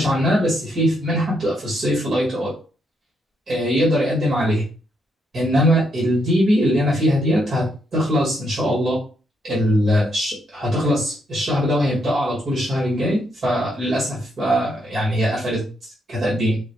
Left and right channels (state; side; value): normal; both; correlation 0.77